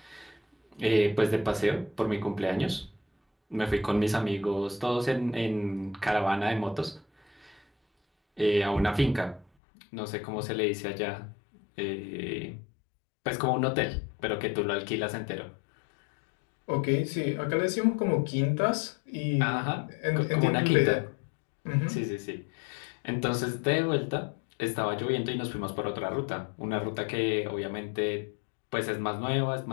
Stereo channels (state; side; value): drops out; right; at 9.5 s